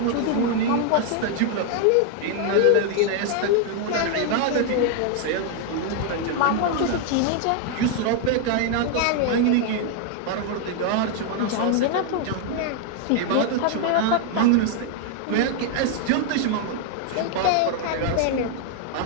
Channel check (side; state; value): both; different; correlation 0.00